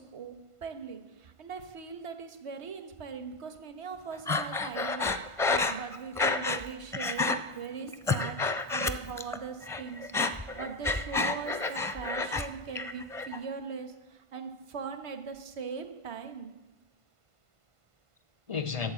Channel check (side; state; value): left; late; 1.5 ms